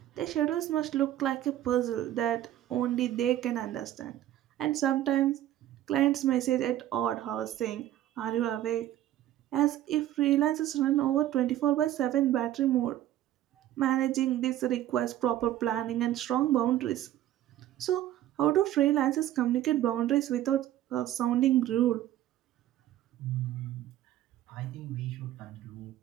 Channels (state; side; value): quieter; left; 13.0 dB